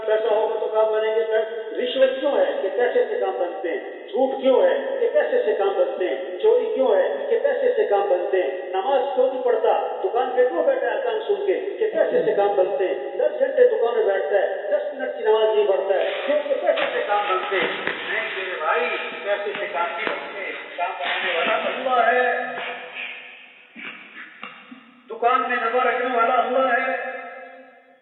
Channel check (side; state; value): both; identical; correlation 1.00